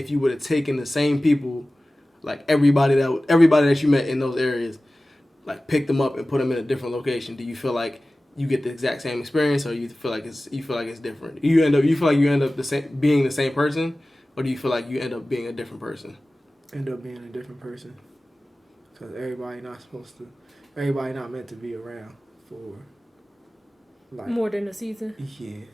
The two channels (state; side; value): normal; both; correlation 0.97